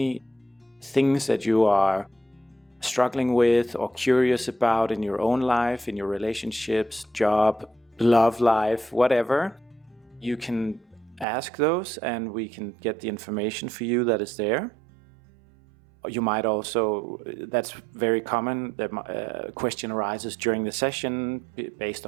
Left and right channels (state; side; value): drops out; left; at 11.2 s